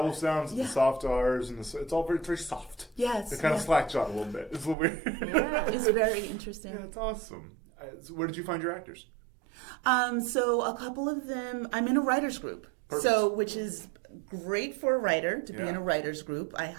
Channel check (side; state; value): left; drops out; at 4.8 s